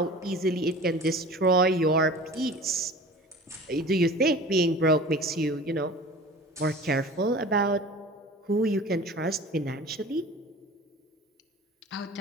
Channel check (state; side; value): normal; both; correlation 0.40